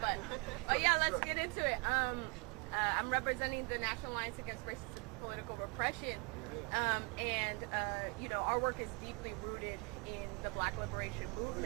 But yeah, let's get into it. I'm representing the National Alliance Against Racist and Political Repression, and our work is deeply rooted in the Black Liberation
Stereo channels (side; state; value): left; quieter; 31.0 dB